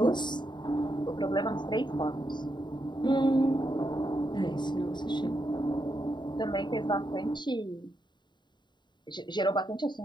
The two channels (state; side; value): late; right; 0.22 ms